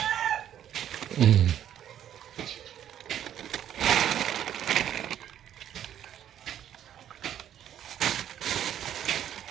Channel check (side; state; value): left; quieter; 10.5 dB